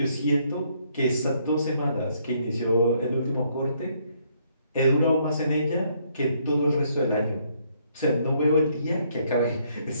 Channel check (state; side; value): inverted; both; correlation -0.69